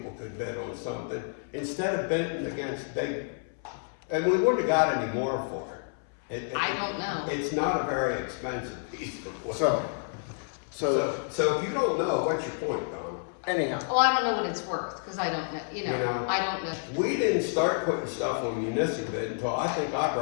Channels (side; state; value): right; silent; 58 dB below the other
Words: could bid on something, instead of bidding against big, and we wouldn't have got any more for it. I don't know. It's not a very expensive piece of equipment. So, if you don't know, what's your point, Don? anyhow, Well, I don't know what it's worth, because I don't know, You know, I don't know. We didn't start putting stuff on municipal bid until I think I